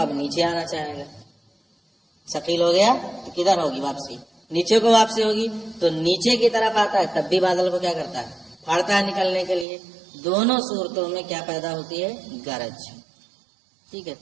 نیچے آنا چاہے گا. ثقیل ہو گیا تو کدھر ہوگی واپسی؟ نیچے کو واپسی ہوگی. تو نیچے کی طرف آتا ہے تب بھی بادل کو کیا کرتا ہے؟ پھاڑتا ہے نکلنے کے لیے. دونوں صورتوں میں کیا پیدا ہوتی ہے؟ گرج. ٹھیک ہے.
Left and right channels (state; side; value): drops out; left; at 9.7 s